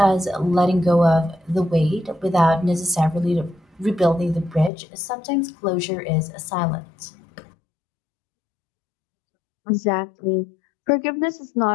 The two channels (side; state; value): right; drops out; at 4.7 s